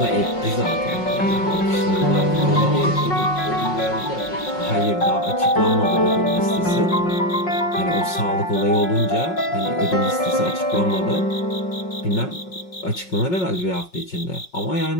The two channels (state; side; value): late; right; 5.5 ms